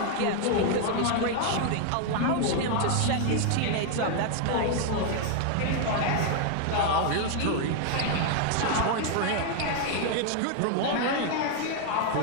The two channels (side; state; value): both; different; correlation 0.00